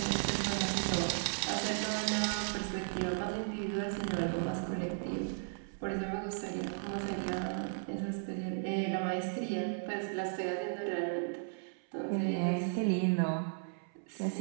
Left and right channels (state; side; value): silent; left; 54 dB below the other